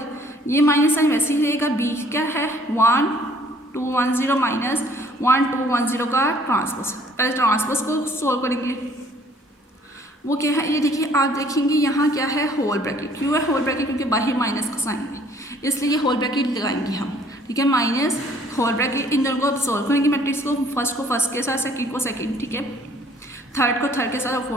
ये माइनस साइन वैसे ही रहेगा। B क्या है, 1 2 1 0 माइनस 1 2 1 0 का ट्रांसपोज। पहले ट्रांसपोज को सोल्व करेंगे, वो क्या है, ये देखिए आप देखेंगे यहाँ क्या है, होल ब्रैकेट। क्यों है होल ब्रैकेट, क्योंकि बाहर माइनस का साइन है, इसलिए होल ब्रैकेट लगाएंगे हम। ठीक है, माइनस होल ब्रैकेट। इन दोनों को अब सोल्व करेंगे मैट्रिक्स को, फर्स्ट को फर्स्ट के साथ, सेकंड को सेकंड। ठीक है, थर्ड को थर्ड के साथ और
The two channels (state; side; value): normal; both; correlation 0.58